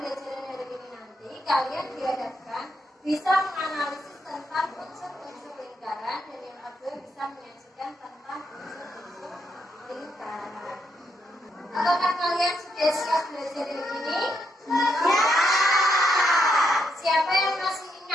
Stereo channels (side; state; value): both; normal; correlation 0.79